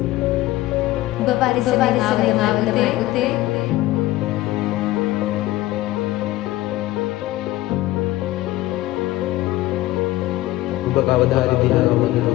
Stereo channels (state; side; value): quieter; right; 16.9 dB